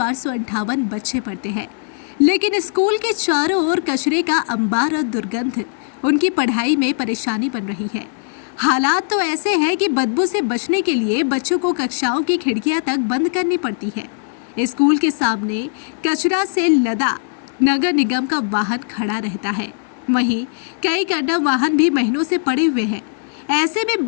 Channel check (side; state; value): right; silent; 65 dB below the other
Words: बच्चे पढ़ते हैं, लेकिन स्कूल के चारों ओर कचरे का अंबार और दुर्गंध उनकी पढ़ाई में परेशानी बन रही है। हालात तो ऐसे हैं कि बदबू से बचने के लिए बच्चों को कक्षाओं की खिड़कियां तक बंद करनी पड़ती है। स्कूल के सामने कचरा से लदा नगर निगम का वाहन खड़ा रहता है। वहीं कई कंडम वाहन भी महीनों से पड़े हुए हैं। ऐसे में